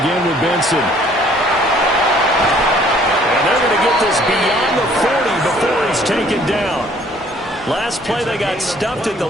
with Benson. And they're going to get this beyond the 40 before he's taken down. Last play they got stuffed at the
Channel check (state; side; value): normal; both; correlation 0.59